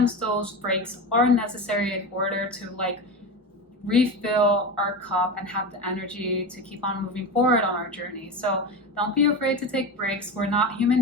those breaks are necessary in order to like refill our cup and have the energy to keep on moving forward on our journey. So don't be afraid to take breaks. We're not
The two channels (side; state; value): both; normal; correlation 0.23